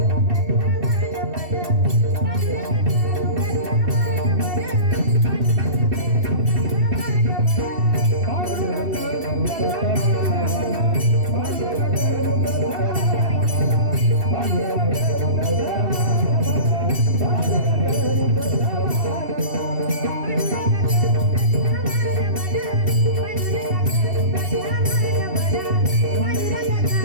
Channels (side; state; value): left; late; 2.7 ms